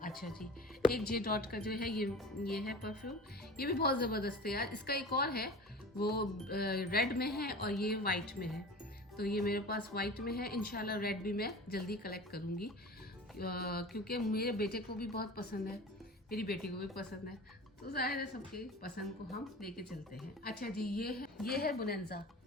अच्छा जी, एक जे डॉट का जो है ये है परफ्यूम, ये भी बहुत ज़बरदस्त है यार। इसका एक और है, वो रेड में है और ये वाइट में है। तो ये मेरे पास वाइट में है, इंशाल्लाह रेड भी मैं जल्दी कलेक्ट करूँगी, क्योंकि मेरे बेटे को भी बहुत पसंद है, मेरी बेटी को भी पसंद है, तो ज़ाहिर है सबके पसंद को हम लेके चलते हैं। अच्छा जी, ये है बोनेंजा।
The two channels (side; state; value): both; normal; correlation 0.37